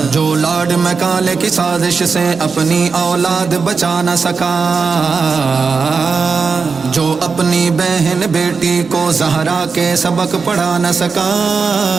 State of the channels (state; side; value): quieter; left; 5.0 dB